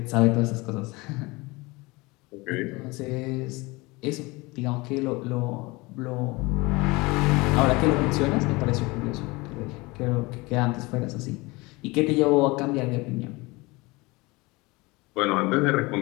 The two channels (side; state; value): right; quieter; 23.7 dB